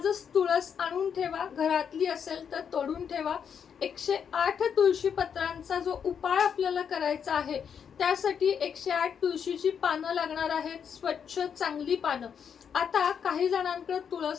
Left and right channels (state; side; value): quieter; right; 7.4 dB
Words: तुळस आणून ठेवा, घरातली असेल तर तोडून ठेवा। 108 तुळशी पत्रांचा जो उपाय आपल्याला करायचा आहे त्यासाठी 108 तुळशीची पानं लागणार आहेत, स्वच्छ चांगली पानं। आता काही जणांकडे